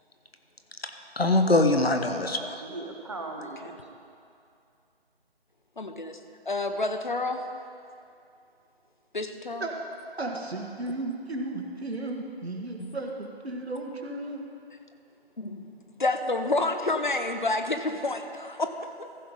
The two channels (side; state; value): both; normal; correlation 0.19